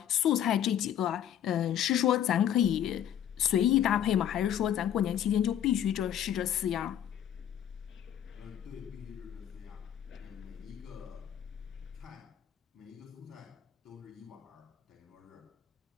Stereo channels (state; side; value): quieter; right; 10.2 dB